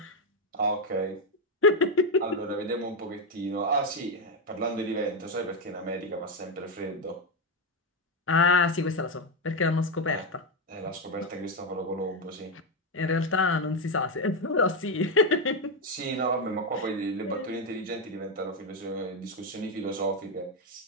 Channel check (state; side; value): normal; both; correlation 0.06